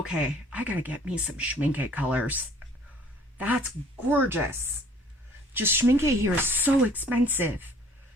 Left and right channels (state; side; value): normal; both; correlation 0.54